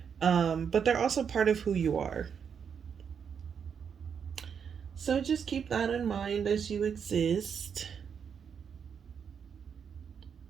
but they're also part of who you are. So just keep that in mind as you exist.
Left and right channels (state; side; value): quieter; left; 7.1 dB